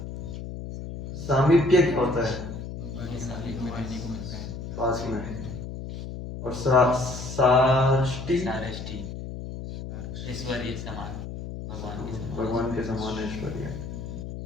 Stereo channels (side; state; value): left; noise; hum, 8 dB below the sound